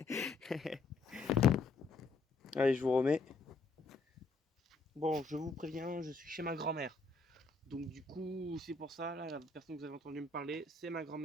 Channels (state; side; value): quieter; right; 3.7 dB